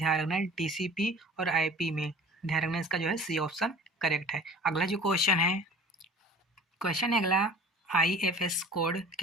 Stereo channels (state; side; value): normal; both; correlation 0.44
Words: रखना, टीसीपी और आईपी में। ध्यान रखना, इसका जो है सी ऑप्शन करेक्ट है। अगला जो क्वेश्चन है अगला, आईएफएस कोड